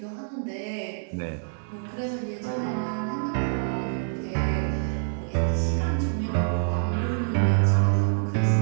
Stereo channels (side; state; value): left; silent; 61 dB below the other